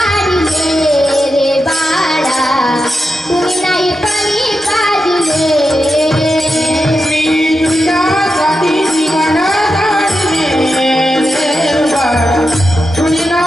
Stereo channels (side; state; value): both; normal; correlation 0.88